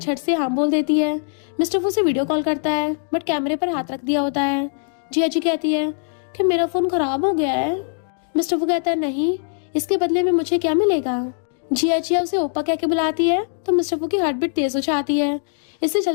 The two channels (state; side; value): silent; right; 64 dB below the other